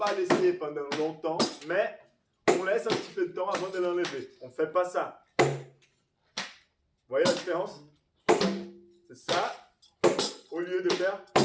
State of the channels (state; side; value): identical; both; correlation 1.00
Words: laisser pendant longtemps, mais on laisse un petit peu de temps avant de l'enlever. On ne fait pas ça. Vous voyez la différence? C'est ça, au lieu de faire